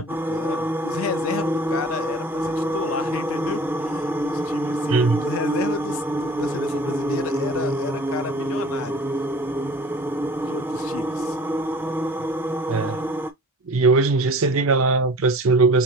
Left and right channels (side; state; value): both; normal; correlation 0.45